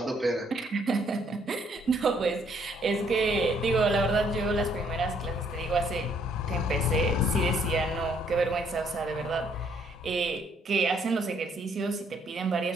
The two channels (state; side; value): normal; both; correlation 0.67